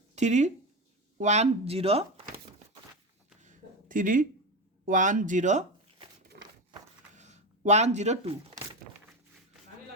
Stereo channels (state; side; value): normal; both; correlation 0.20